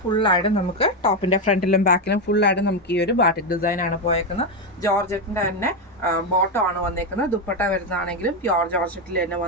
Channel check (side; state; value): both; normal; correlation 0.08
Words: ഫുള്ളായിട്ട് നമുക്ക് ടോപ്പിൻ്റെ ഫ്രണ്ടിലും ബാക്കിലും ഫുള്ളായിട്ട് നമുക്ക് ഈ ഒരു ബാട്ടിക് ഡിസൈനാണ് പോയേക്കുന്നത്. ജോർജറ്റിൻ്റെ തന്നെ ബോട്ടം ആണ് വന്നേക്കുന്നത്. ദുപ്പട്ട വരുന്നതാണെങ്കിലും പ്യോർ ജോർജറ്റിൽ തന്നെ